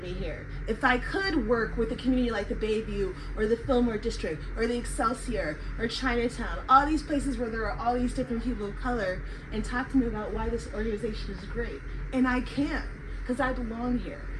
here. If I could work with a community like the Bayview, or the Fillmore District, or the Excelsior, or Chinatown, all these places where there are all these different people of color, and talk to me about why this organization is great. And I can, because I belong here.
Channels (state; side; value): identical; both; correlation 1.00